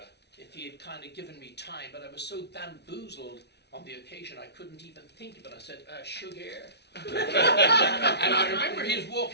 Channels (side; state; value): right; late; 0.49 ms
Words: if he had kind of given me time, but I was so bamboozled on the occasion I couldn't even think of it. I said, sugar. And I remember he was